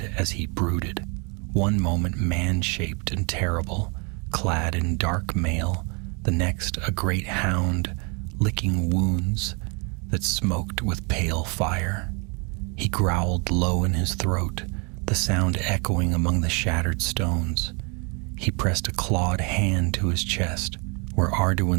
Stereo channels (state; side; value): quieter; left; 33.3 dB